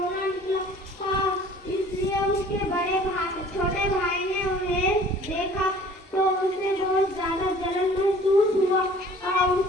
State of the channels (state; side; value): normal; both; correlation 0.50